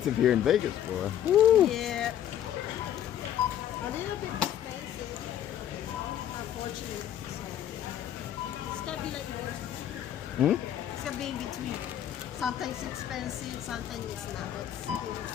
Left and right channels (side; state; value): right; quieter; 10.7 dB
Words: here in Vegas, boy. Woo. Yeah. A little bit expensive, unfortunately. So it's gonna be like that. It's gonna be in between. Sometimes it's expensive, sometimes it's not.